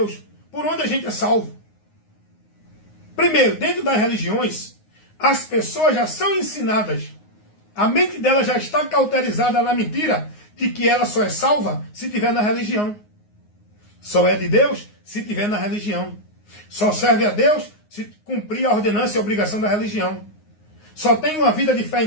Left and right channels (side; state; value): right; late; 9.6 ms